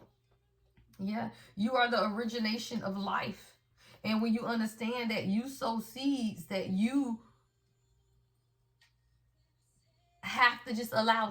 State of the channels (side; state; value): both; identical; correlation 1.00